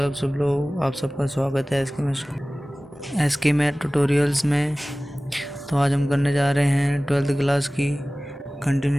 आप सब लोग। आप सबका स्वागत है एस के मैथ ट्यूटोरियल्स में। तो आज हम करने जा रहे हैं 12th क्लास की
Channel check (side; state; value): both; normal; correlation 0.98